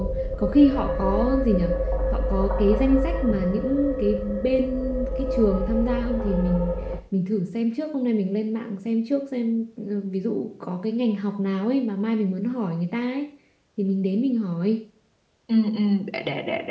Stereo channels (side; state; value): both; identical; correlation 1.00